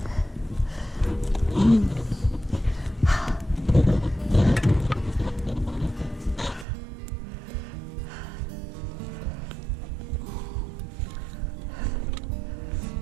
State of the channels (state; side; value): drops out; left; at 6.7 s